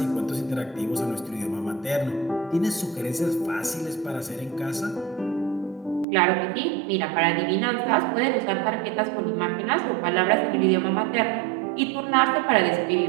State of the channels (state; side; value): drops out; left; at 6.1 s